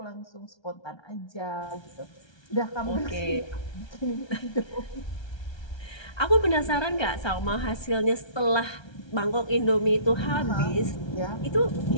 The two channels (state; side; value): late; right; 1.3 ms